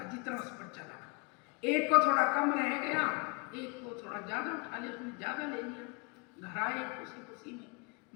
जितना उस पर चला। एक को थोड़ा कम रह गया, एक को थोड़ा ज्यादा उठा लिया, उसने ज्यादा ले लिया। घर आए खुशी खुशी में,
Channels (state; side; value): quieter; right; 30.6 dB